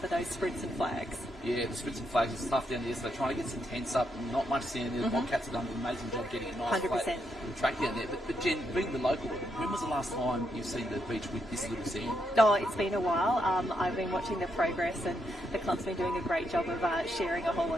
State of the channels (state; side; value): normal; both; correlation 0.80